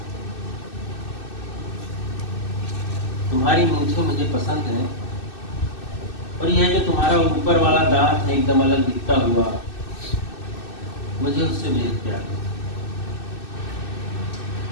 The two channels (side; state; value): right; late; 2.6 ms